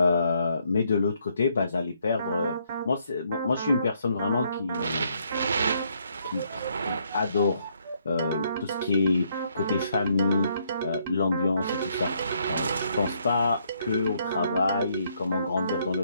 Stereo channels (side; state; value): both; inverted; correlation -0.72